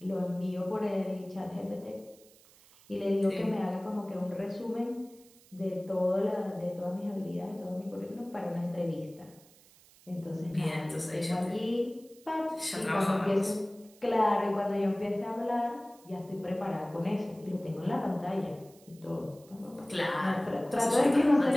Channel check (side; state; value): right; noise; hiss, 26 dB below the sound